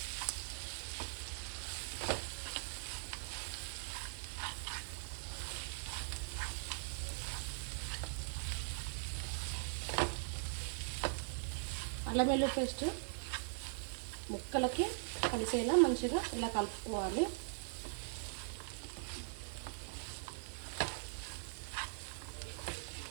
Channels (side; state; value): left; silent; 50 dB below the other